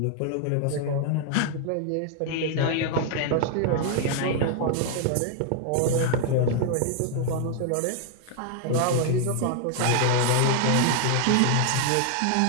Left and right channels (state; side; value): different; both; correlation 0.00